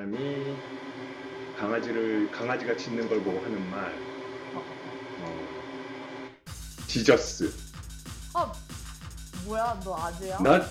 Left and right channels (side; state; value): both; identical; correlation 1.00